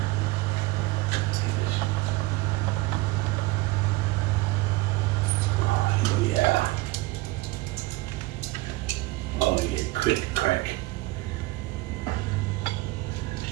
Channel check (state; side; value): quieter; left; 20.7 dB